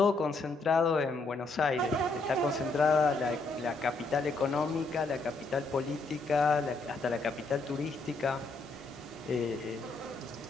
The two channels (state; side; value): quieter; right; 3.4 dB